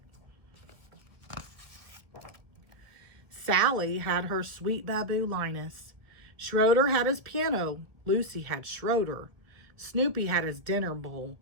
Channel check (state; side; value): late; left; 1.7 ms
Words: Sally had her sweet Baboo Linus. Schroeder had his piano. Lucy had Schroeder. Snoopy had his dinner bowl.